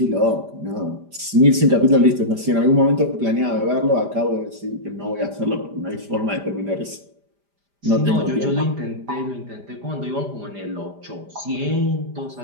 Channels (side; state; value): left; late; 5.0 ms